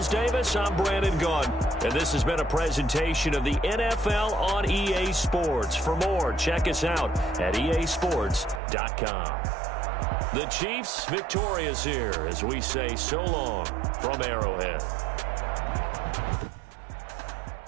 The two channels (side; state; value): left; drops out; at 8.6 s